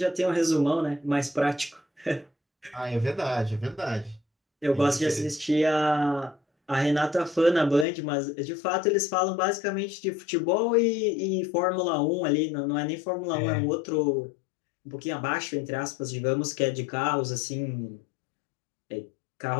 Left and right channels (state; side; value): drops out; right; at 7.9 s